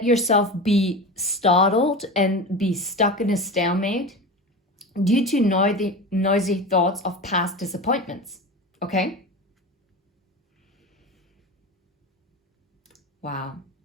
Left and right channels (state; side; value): normal; both; correlation 0.28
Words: yourself be startled and be stuck in a stalemate due to noisy thoughts of past disappointments. Okay? Wow.